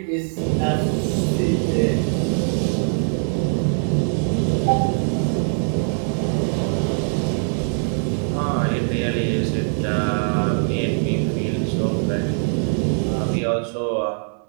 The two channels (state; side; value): silent; left; 64 dB below the other